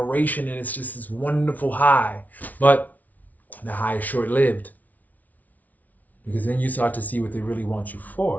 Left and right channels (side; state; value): right; late; 0.075 ms